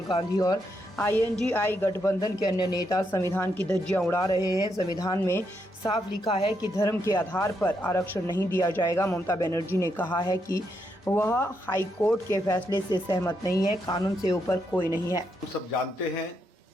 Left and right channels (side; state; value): both; normal; correlation 0.80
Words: गांधी और आईएनडीआई गठबंधन के अन्य नेता संविधान की धज्जियां उड़ा रहे हैं। संविधान में साफ लिखा है कि धर्म के आधार पर आरक्षण नहीं दिया जाएगा। ममता बनर्जी ने कहा है कि वह हाई कोर्ट के फैसले से सहमत नहीं है। कानून से ऊपर कोई नहीं है। हम सब जानते हैं